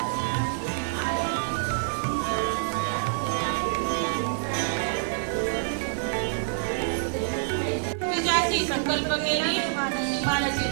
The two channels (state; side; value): silent; left; digital silence